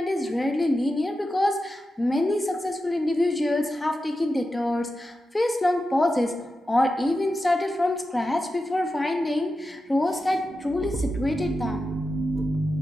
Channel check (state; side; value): normal; both; correlation 0.90